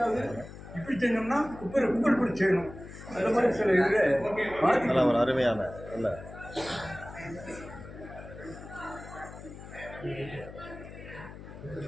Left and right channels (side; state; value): left; noise; hum, 14 dB below the sound